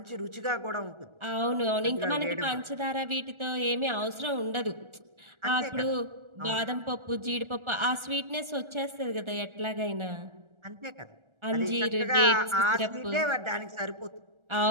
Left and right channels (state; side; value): late; left; 1.4 ms